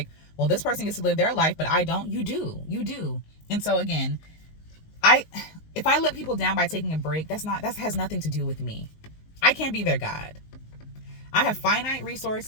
well, this person gets to live their life, but I don't. You do. And so again, if I let people down by taking a break, that has nothing to do with me. I can't be their God. I have finite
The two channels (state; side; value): late; right; 19 ms